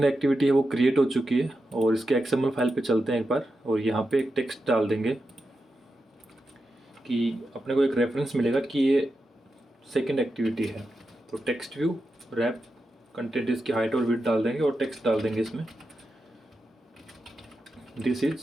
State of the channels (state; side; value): normal; both; correlation 0.89